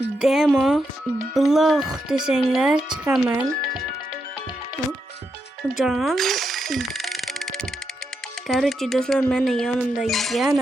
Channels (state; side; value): normal; both; correlation 0.83